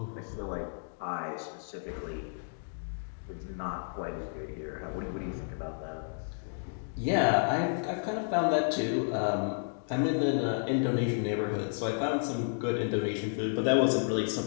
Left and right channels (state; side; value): silent; right; digital silence